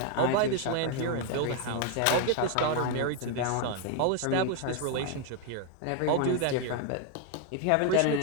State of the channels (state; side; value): different; both; correlation 0.01